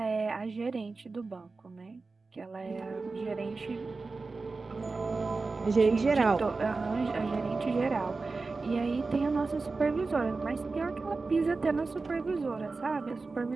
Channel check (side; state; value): left; quieter; 3.9 dB